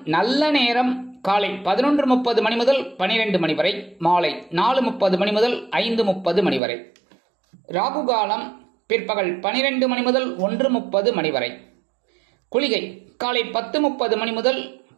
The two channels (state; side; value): drops out; left; at 6.6 s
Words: நல்ல நேரம் காலை 11:30 மணி முதல் 12 மணி வரை, மாலை 4:30 மணி முதல் 5:30 மணி வரை. ராகு காலம் பிற்பகல் 12 மணி முதல் 1:30 மணி வரை. குளிகை காலை 10:30 மணி முதல்